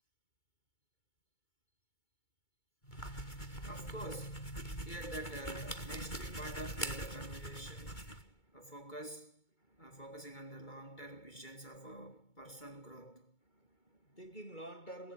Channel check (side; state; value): right; late; 2.2 ms